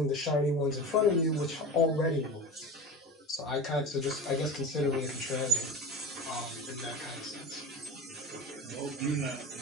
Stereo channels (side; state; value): both; normal; correlation 0.32